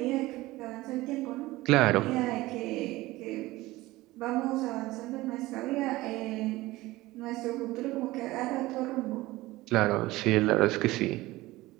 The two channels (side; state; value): left; quieter; 18.8 dB